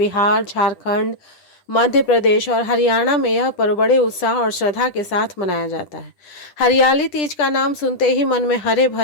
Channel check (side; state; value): right; late; 10 ms